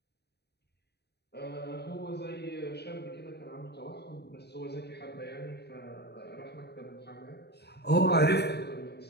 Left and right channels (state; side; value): late; right; 0.48 ms